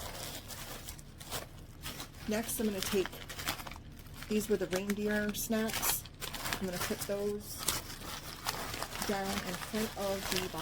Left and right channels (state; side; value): identical; both; correlation 1.00